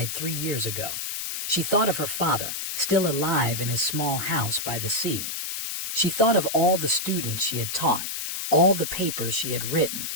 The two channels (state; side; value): noise; left; hiss, 4 dB below the sound